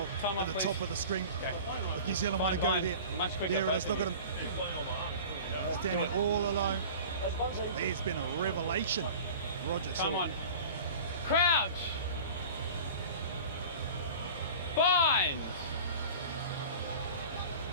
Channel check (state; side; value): inverted; both; correlation -0.39